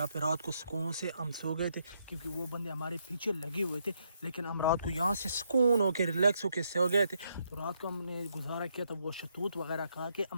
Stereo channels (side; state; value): both; inverted; correlation -0.76